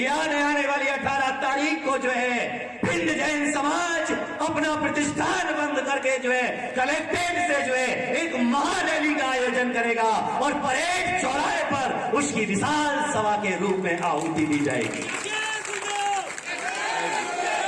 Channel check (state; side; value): identical; both; correlation 1.00